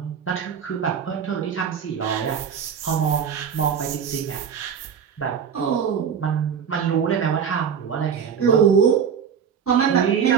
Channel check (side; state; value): left; quieter; 7.4 dB